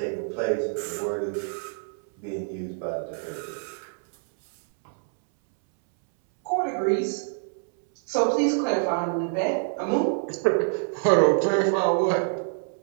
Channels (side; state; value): left; silent; 61 dB below the other